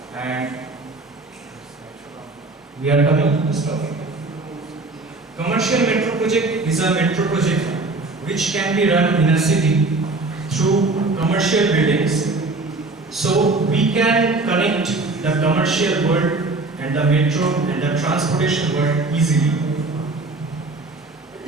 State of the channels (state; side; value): quieter; left; 3.3 dB